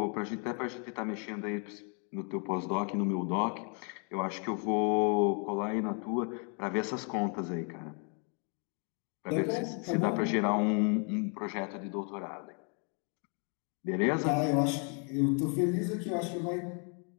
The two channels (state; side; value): quieter; right; 39.1 dB